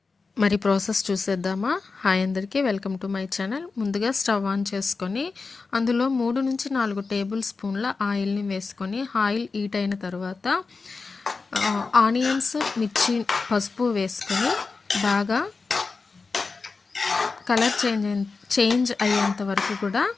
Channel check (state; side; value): quieter; right; 4.3 dB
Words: మరి ప్రాసెస్ చూసేద్దామా? హాయ్ అందరికీ, వెల్కమ్ టు మై ఛానల్. ముందుగా స్టవ్ ఆన్ చేసుకొని అందులో 3-4 టేబుల్ స్పూన్ల ఆయిల్‌ని వేసుకొని ఆయిల్ హీట్ అయిన తర్వాత ఆనియన్స్, మిర్చి, పసుపు వేసుకొని బాగా కలర్ చేంజ్ అయ్యేంత వరకు కూడా